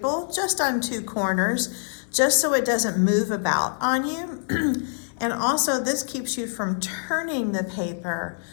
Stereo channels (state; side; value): silent; right; 57 dB below the other